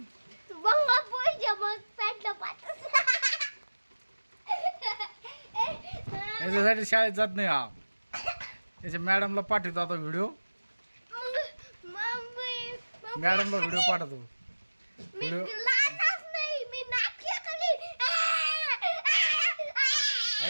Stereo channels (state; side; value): inverted; both; correlation -1.00